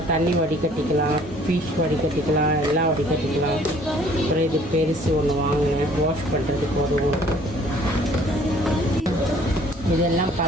தண்ணி வடிகட்டிக்கலாம், ஃபிஷ் வடிகட்டிக்கலாம், எல்லாம் வடிகட்டிக்கலாம். அப்புறம் இது பெருசு ஒன்று வாங்கினேன் வாஷ் பண்ணுறதுக்கு உதவும். இதெல்லாம்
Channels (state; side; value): normal; both; correlation 0.56